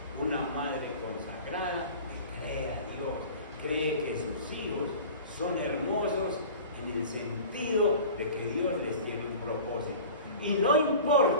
una madre consagrada le cree a Dios, cree que sus hijos son hermosos en el sentido de que Dios les tiene un propósito. Y no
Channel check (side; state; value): both; inverted; correlation -0.39